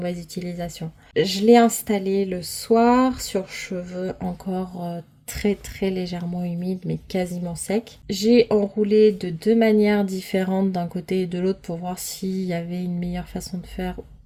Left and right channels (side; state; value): both; identical; correlation 1.00